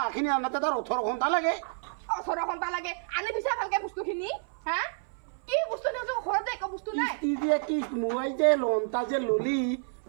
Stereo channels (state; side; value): silent; left; 58 dB below the other